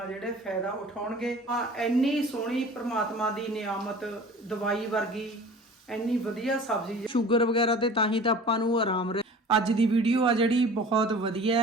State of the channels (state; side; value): normal; both; correlation 0.43